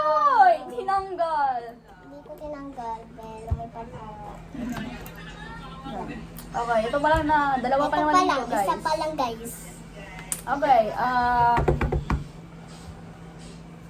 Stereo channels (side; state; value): both; identical; correlation 1.00